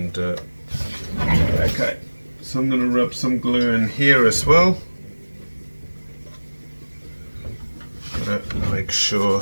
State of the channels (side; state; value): both; inverted; correlation -1.00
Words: okay, so I'm going to rub some glue in here as well. Gotta make sure.